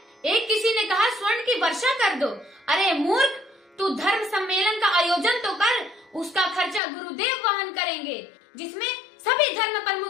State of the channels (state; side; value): drops out; right; at 6.8 s